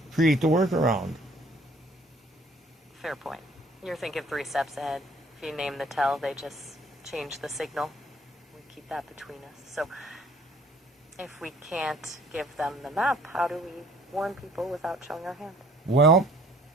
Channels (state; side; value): normal; both; correlation 0.56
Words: create the workaround. fair point. You're thinking 3 steps ahead. If you name the tell, they just change the signal. We keep that between us. So if we can't give them the map, how do we warn people without showing our hand? Well,